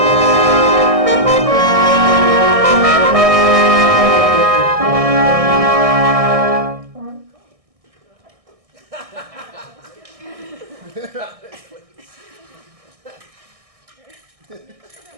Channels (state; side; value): late; left; 1.6 ms